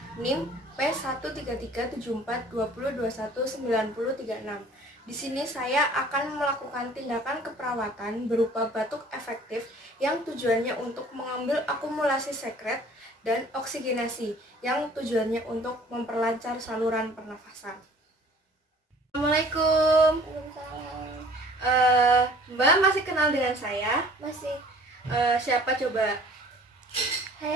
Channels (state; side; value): normal; both; correlation 0.51